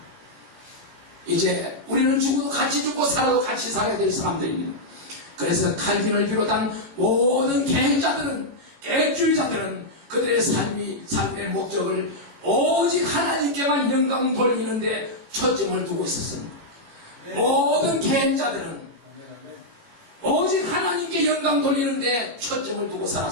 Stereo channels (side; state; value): left; late; 18 ms